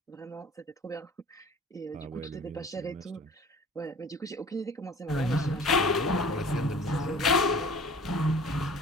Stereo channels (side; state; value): both; normal; correlation 0.45